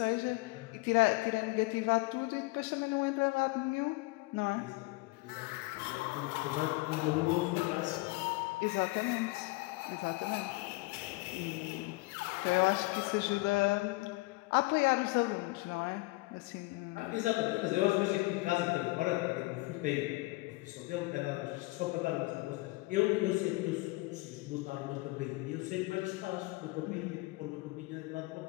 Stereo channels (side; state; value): right; quieter; 23.0 dB